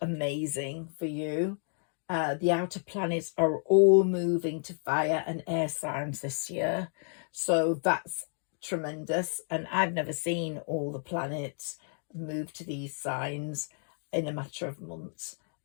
amazing for you. The outer planets are all moving to fire and air signs this year. So that's tremendous. And I've never seen all the planets move to these signs in a matter of months.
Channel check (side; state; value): right; silent; 57 dB below the other